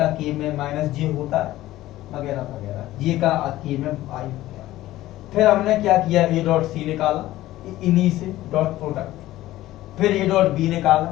के में माइनस जे होता है वगैरह वगैरह, जे का के में आई हो गया। फिर हमने क्या किया, ए डॉट सी निकाला इन्हीं से डॉट प्रोडक्ट, फिर ए डॉट बी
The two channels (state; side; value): quieter; right; 15.7 dB